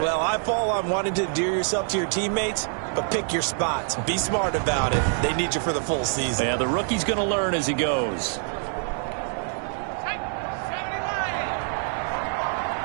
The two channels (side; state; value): left; silent; 61 dB below the other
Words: Well, I fall on wanting to endear yourself to your teammates, but pick your spots. Be smart about it. They need you for the full season. Yeah, the rookie's going to learn as he goes.